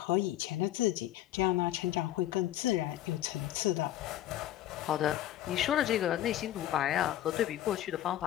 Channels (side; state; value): right; quieter; 13.0 dB